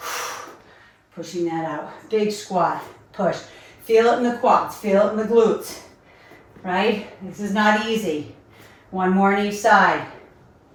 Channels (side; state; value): both; identical; correlation 1.00